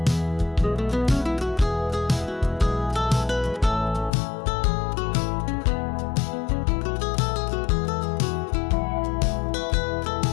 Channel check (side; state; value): right; drops out; at 4.1 s